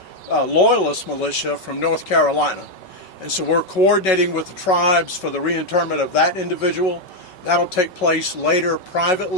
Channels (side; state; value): right; late; 5.3 ms